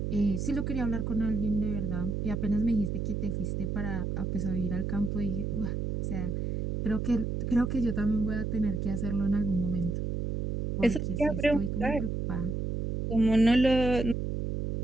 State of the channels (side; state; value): right; noise; hum, 2 dB below the sound